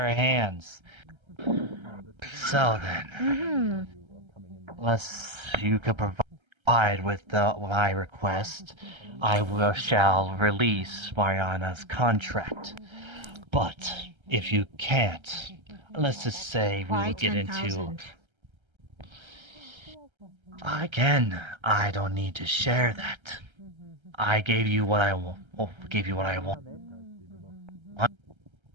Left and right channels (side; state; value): left; late; 1.3 ms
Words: hands. So then, unless you could provide with my request, I shall release Mariana's contract. But if you can't, let's just say we Why will get 10,000? into... Again, I don't need to share that. I gave you what I want.